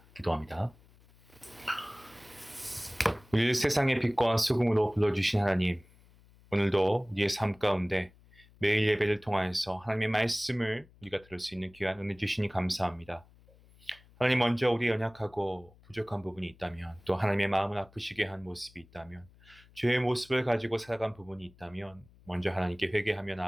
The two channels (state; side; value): noise; left; hum, 26 dB below the sound